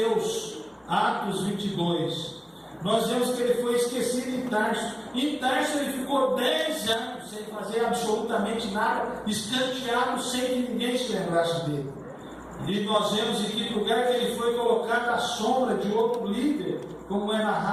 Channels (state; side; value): identical; both; correlation 1.00